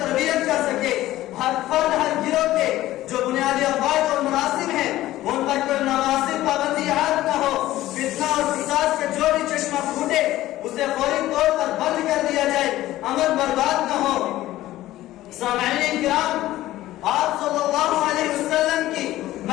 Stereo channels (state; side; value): quieter; right; 15.3 dB